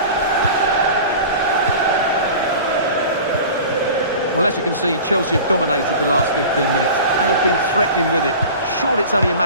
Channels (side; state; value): both; inverted; correlation -0.37